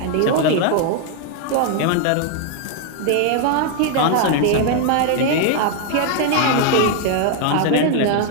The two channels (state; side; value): different; both; correlation 0.00